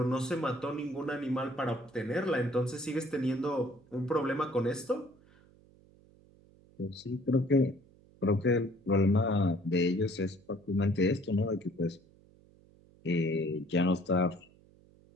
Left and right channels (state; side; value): noise; right; hum, 27 dB below the sound